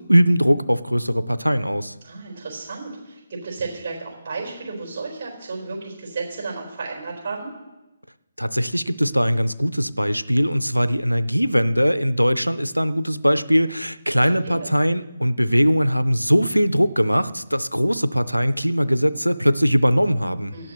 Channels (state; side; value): inverted; both; correlation -0.98